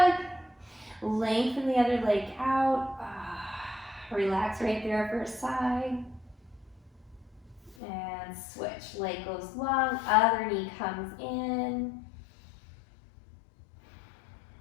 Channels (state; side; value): drops out; right; at 7.8 s